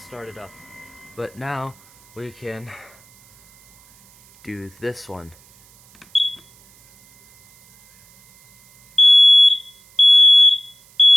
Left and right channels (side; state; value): right; noise; hiss, 29 dB below the sound